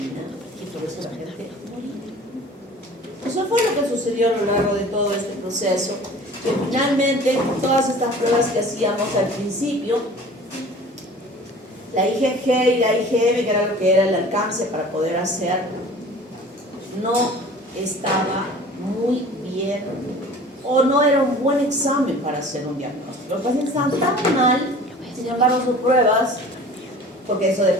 y por eso la gente moría. Eso fue lo que sucedió a lo largo de todo este proceso, que finalmente todas estas pruebas que hacíamos al principio, la IgG y la IgM, que era lo que era el alcance para poder hacer, no estaba muy bien, o no era un buen examen para hacer un diagnóstico. Los pacientes estaban tan mal, sin embargo sus pruebas, porque eso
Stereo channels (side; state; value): both; normal; correlation 0.44